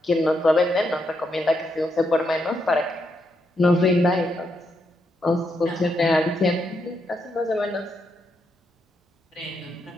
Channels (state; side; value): normal; both; correlation 0.80